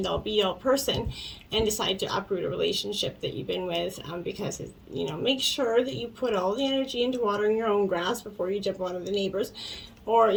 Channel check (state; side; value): identical; both; correlation 1.00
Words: all be all person, and decide to uproot a relationship that you've been with, because you know, make sure that you put all the energy into watering your own grass before you jump on the neighbors. Or,